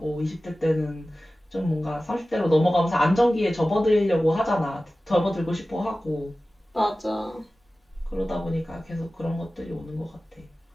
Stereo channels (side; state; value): both; normal; correlation 0.96